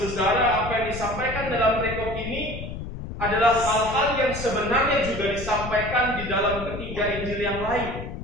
apa yang disampaikan dalam perikop ini adalah hal-hal yang sebenarnya juga disampaikan di dalam ketiga Injil yang lain.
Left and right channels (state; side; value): noise; left; rumble, 8 dB below the sound